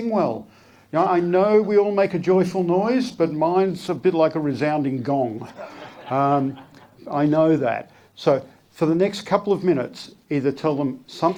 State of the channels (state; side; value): identical; both; correlation 1.00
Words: well. Now, I know we all make a joyful noise, but mine's a bit like a resounding gong. I know that. So for the next couple of minutes, either tell them